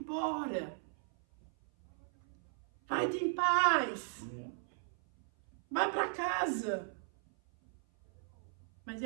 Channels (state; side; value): silent; left; 53 dB below the other